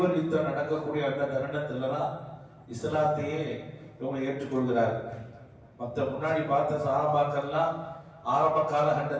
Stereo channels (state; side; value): identical; both; correlation 1.00